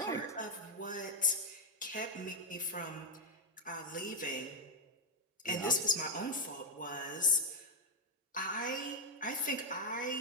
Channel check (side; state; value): both; normal; correlation -0.02